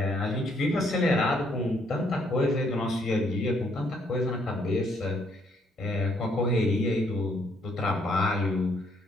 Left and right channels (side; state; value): both; normal; correlation 0.69